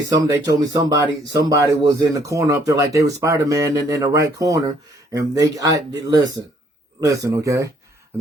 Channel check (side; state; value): both; normal; correlation 0.64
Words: they told me somebody was in the corner up there like they were Spider-Man in the right corner, and listen, okay? And